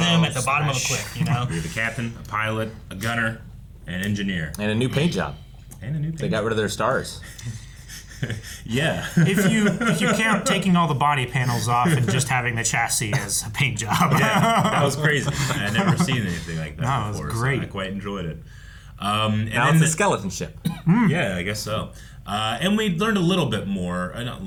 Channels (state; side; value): identical; both; correlation 1.00